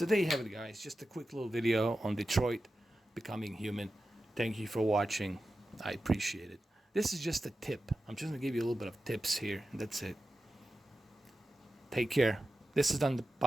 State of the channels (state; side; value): normal; both; correlation 0.92